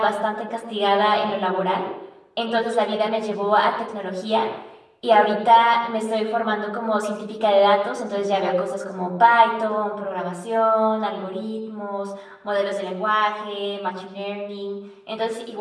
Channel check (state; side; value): identical; both; correlation 1.00